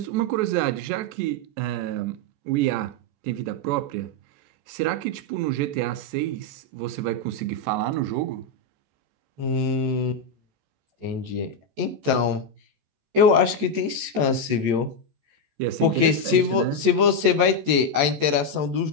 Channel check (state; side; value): late; left; 14 ms